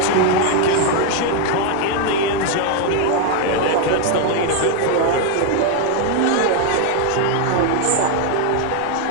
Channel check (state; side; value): different; both; correlation 0.01